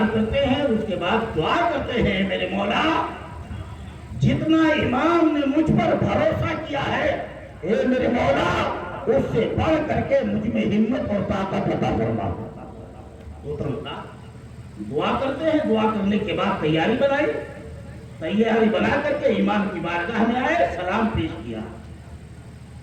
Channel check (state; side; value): identical; both; correlation 1.00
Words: کرتے ہیں، اس کے بعد دعا کرتے ہیں میرے مولا جتنا امام نے مجھ پر بھروسہ کیا ہے اے میرے مولا اس سے بڑھ کر کے مجھ میں ہمت اور طاقت عطا فرما۔ دعا کرتے ہیں، دعا کرنے کے بعد تیاری بنا کر کے امام کی بارگاہ میں آئے، سلام پیش کیا،